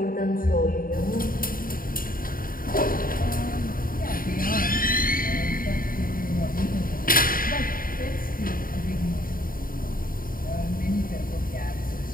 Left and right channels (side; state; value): right; late; 0.41 ms